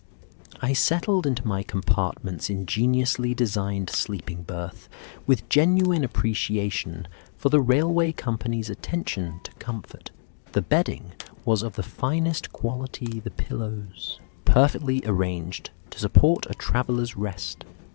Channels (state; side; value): silent; right; digital silence